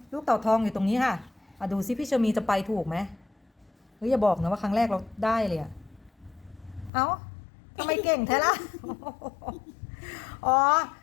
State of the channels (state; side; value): drops out; right; at 6.9 s